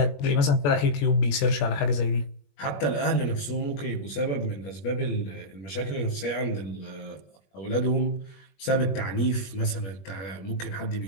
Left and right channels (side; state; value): right; late; 21 ms